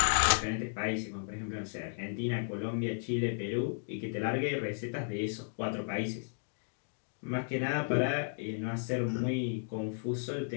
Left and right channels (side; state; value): right; silent; digital silence